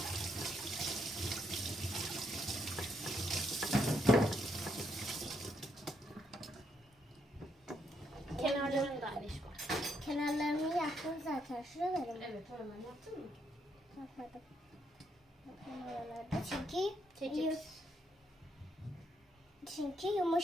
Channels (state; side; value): normal; both; correlation 0.76